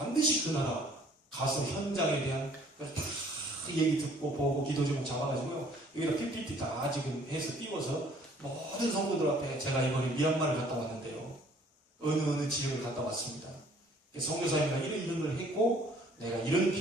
그 나라 가서 현장에 대한 다 얘기 듣고 보고 기도 제목 잡아가지고요 여기다 PPT 다 지금 해서 띄워서 모든 성도들 앞에 제가 이번에 미얀마를 갔다 왔는데요 어느 지역을 갔다 왔습니다. 선교사님과 이런 걸 했고 내가 이런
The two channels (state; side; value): normal; both; correlation 0.58